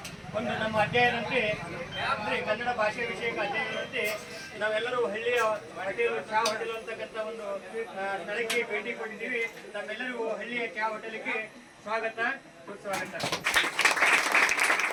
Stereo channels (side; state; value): both; identical; correlation 1.00